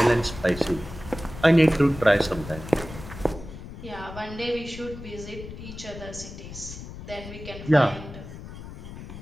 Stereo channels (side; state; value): left; noise; rumble, 12 dB below the sound